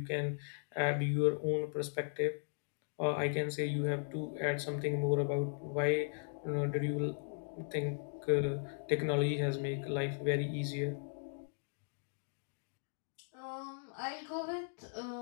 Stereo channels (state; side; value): silent; right; digital silence